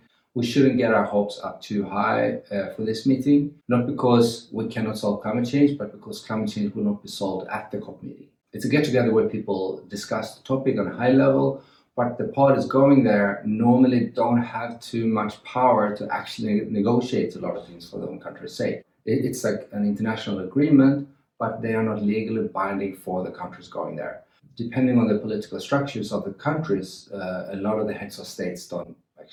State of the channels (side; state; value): both; identical; correlation 1.00